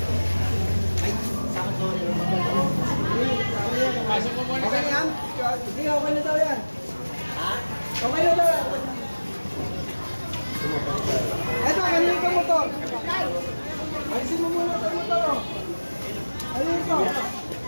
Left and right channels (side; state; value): both; inverted; correlation -1.00